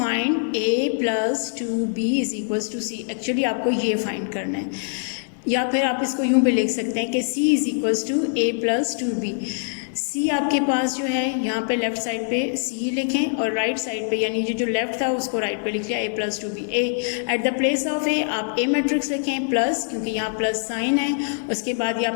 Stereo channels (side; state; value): right; silent; digital silence